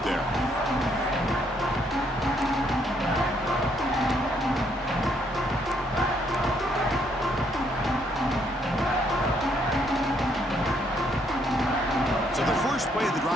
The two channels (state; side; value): normal; both; correlation 0.70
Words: there. So the first play of the